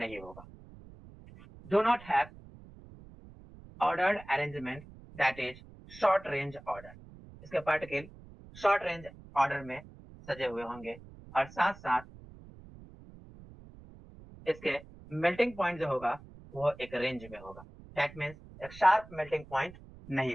होगा. Do not have ordered arrangement, that is short range order. इसके पार्टिकल शॉर्ट रेंज ऑर्डर में सजे हुए होंगे और साथ साथ इसके मेल्टिंग पॉइंट जो होगा वो एक रेंज में होगा. दैट मीन्स एक शार्प मेल्टिंग पॉइंट नहीं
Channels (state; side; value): noise; right; rumble, 19 dB below the sound